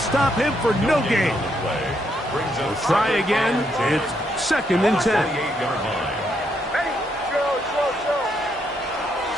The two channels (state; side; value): normal; both; correlation 0.76